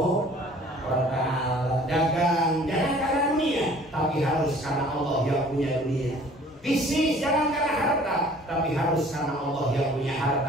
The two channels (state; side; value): normal; both; correlation 0.52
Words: wa ta'ala. Dagang jangan karena dunia, tapi harus karena Allah yang punya dunia. Bisnis jangan karena harta, tapi harus karena Allah yang punya